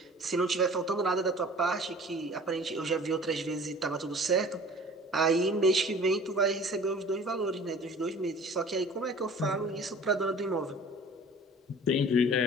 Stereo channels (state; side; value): normal; both; correlation 0.46